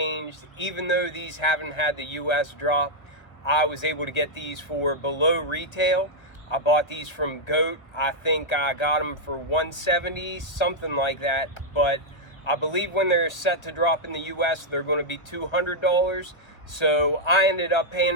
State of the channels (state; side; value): late; right; 1.5 ms